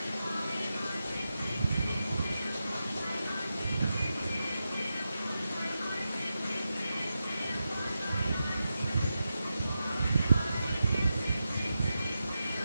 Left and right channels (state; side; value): inverted; both; correlation -0.89